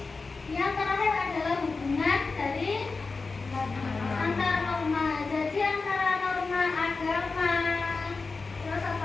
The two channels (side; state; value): right; quieter; 4.1 dB